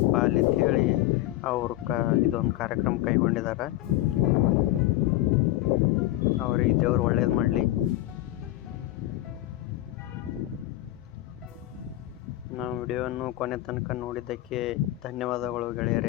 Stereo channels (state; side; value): quieter; right; 15.9 dB